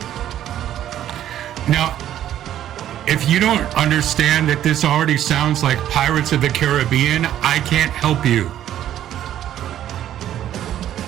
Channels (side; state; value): left; quieter; 11.5 dB